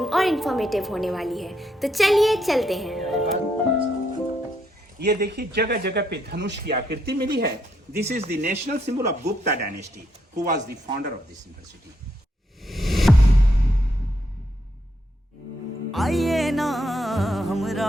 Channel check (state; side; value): normal; both; correlation 0.77